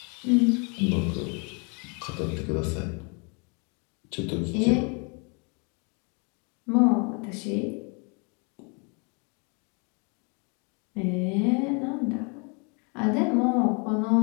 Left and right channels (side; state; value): right; quieter; 34.4 dB